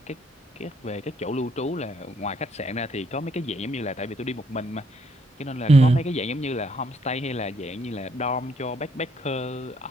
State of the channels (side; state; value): both; normal; correlation 0.70